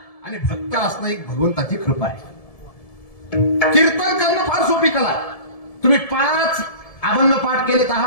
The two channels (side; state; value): right; late; 1.7 ms